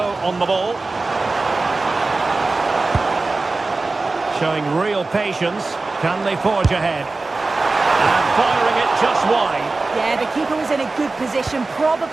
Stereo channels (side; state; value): left; quieter; 3.5 dB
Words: on the ball. Showing real patience. Can they forge ahead? And firing it just wide. Yeah, the keeper was in a good position.